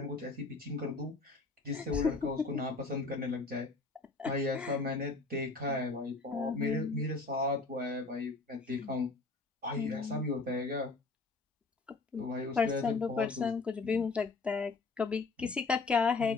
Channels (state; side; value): quieter; right; 3.8 dB